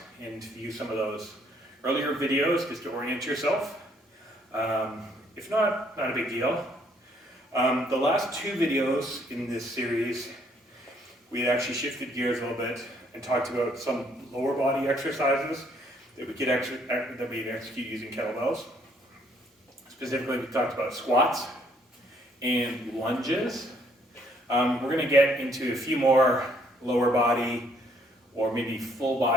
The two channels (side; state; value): both; normal; correlation 0.66